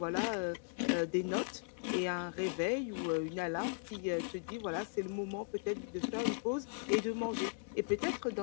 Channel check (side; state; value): right; silent; digital silence